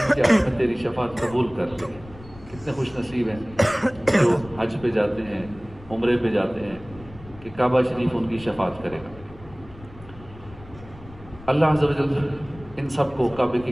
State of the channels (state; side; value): noise; left; rumble, 19 dB below the sound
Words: کے حق میں تیری شفاعت قبول کر لی۔ کتنے خوش نصیب ہیں جو حج پہ جاتے ہیں، عمرے پہ جاتے ہیں کہ کعبہ شریف ان کی شفاعت کرے گا۔ اللہ عز و جل ان سب کو کعبے کے